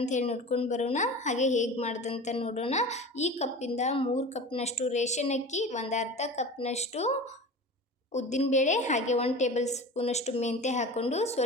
ಹೇಳಿ ನೋಡ್ಕೊಂಡು ಬರೋಣ, ಹಾಗೆ ಹೇಗೆ ಮಾಡೋದಂತ ನೋಡೋಣ. ಈ ಕಪ್ಪಿಂದ 3 ಕಪ್ನಷ್ಟು ರೇಷನ್ ಅಕ್ಕಿ, ಒಂದು ಅರ್ಧ ಕಪ್ನಷ್ಟು ಉದ್ದಿನಬೇಳೆ, ಹಾಗೆ 1 ಟೇಬಲ್ ಸ್ಪೂನಷ್ಟು ಮೆಂತ್ಯ ಹಾಕ್ಕೊಂಡು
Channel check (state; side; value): normal; both; correlation 0.34